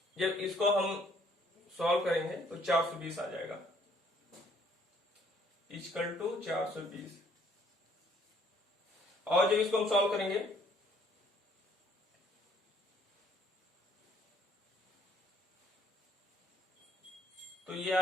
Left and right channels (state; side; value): normal; both; correlation 0.63